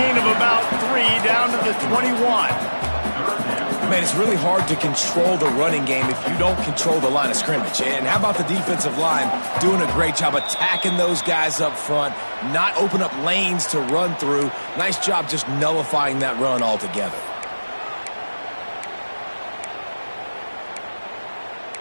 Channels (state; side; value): inverted; both; correlation -1.00